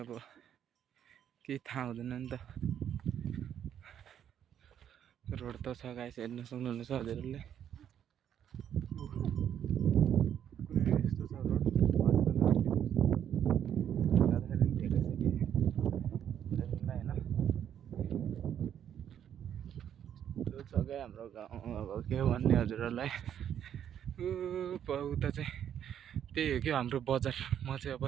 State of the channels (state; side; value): quieter; left; 9.5 dB